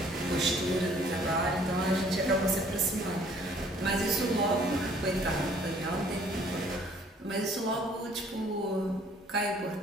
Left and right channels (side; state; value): both; normal; correlation 0.58